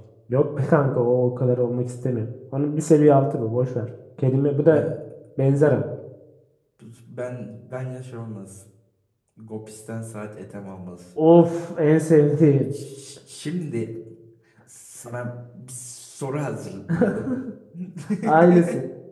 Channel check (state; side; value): identical; both; correlation 1.00